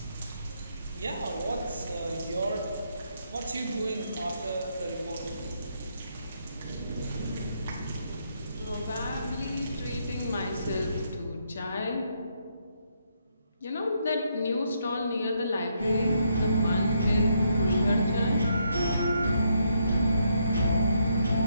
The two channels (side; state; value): both; inverted; correlation -0.75